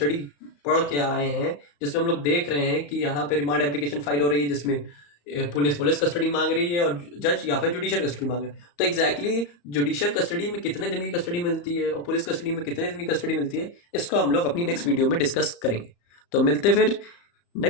पढ़ के आए हैं, जिसमें हम लोग देख रहे हैं कि यहाँ पे रिमांड एप्लीकेशन फाइल हो रही है, जिसमें पुलिस कस्टडी मांग रही है और जज या फिर जुडिशियल कस्टडी मांग रहे हैं। तो एग्जैक्टली जुडिशियल कस्टडी में कितने दिन की कस्टडी मिलती है और पुलिस कस्टडी में कितने दिन की कस्टडी मिलती है, इसको हम लोग अपनी नेक्स्ट वीडियो में डिस्कस करेंगे। तो मिलते फिर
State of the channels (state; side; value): late; right; 34 ms